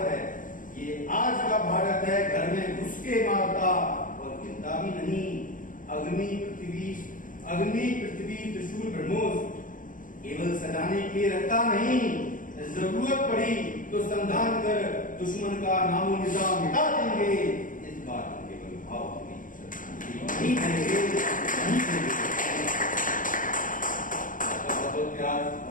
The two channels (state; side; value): late; right; 0.39 ms